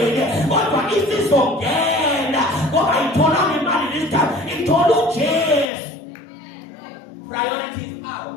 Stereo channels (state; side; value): drops out; right; at 5.7 s